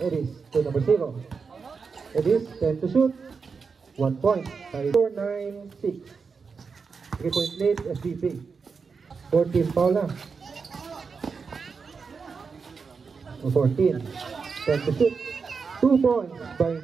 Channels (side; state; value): left; quieter; 5.2 dB